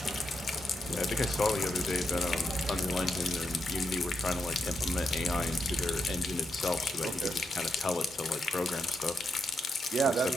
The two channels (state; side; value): normal; both; correlation 0.83